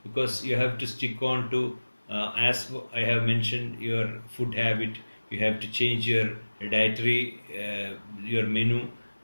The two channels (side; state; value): both; inverted; correlation -1.00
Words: because you have to stick on to, as I have mentioned, your food habit. You have to change your dietary, your menu.